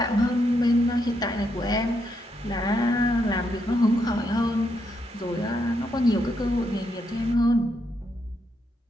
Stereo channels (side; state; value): both; normal; correlation 0.79